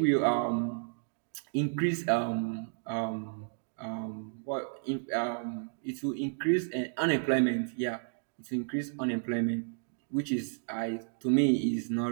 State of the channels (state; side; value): silent; left; digital silence